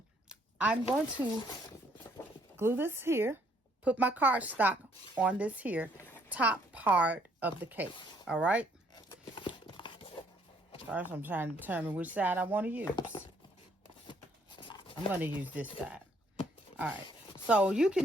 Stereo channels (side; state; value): both; normal; correlation 0.66